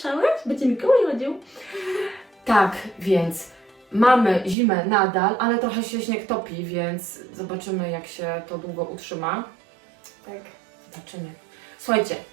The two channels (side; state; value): left; drops out; at 4.5 s